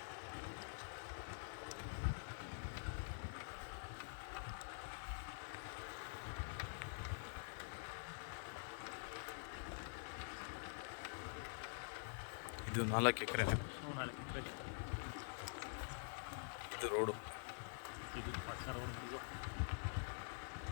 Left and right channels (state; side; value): silent; right; digital silence